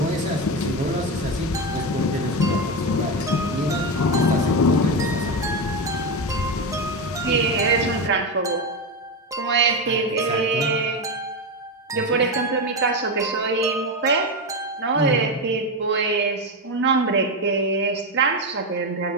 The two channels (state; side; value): normal; both; correlation 0.13